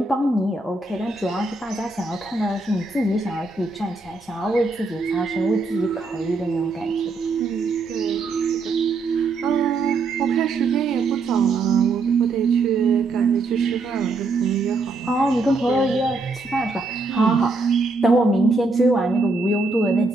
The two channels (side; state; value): left; quieter; 3.6 dB